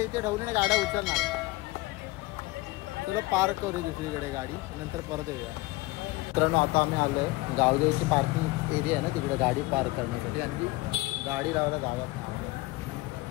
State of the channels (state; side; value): quieter; right; 21.3 dB